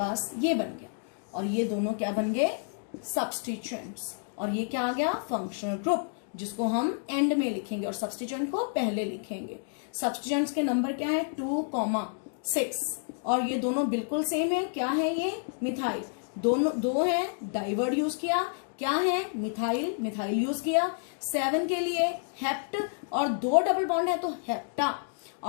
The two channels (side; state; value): right; silent; digital silence